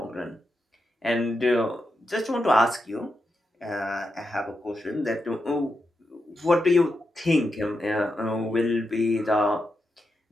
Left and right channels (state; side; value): normal; both; correlation 0.86